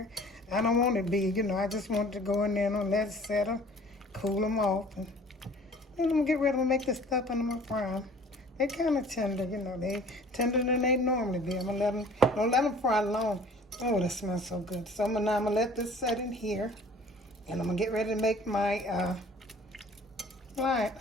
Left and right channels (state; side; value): normal; both; correlation 0.50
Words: I don't want it to be, I just want it to go in there and let it settle, cool them off. And then I'm gonna get ready to make this stuff and I'm gonna fry them. They're kind of tender, they tender than they normally be. I'm gonna don't let them fry long. Oh, that smells so good. So now I'm gonna let this set in here. And I'm gonna get ready to make my